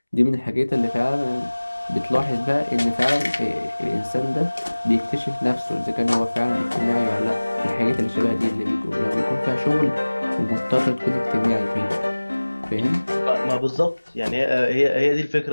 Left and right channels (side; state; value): both; inverted; correlation -1.00